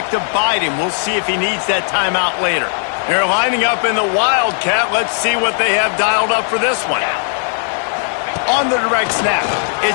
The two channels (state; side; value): silent; right; 57 dB below the other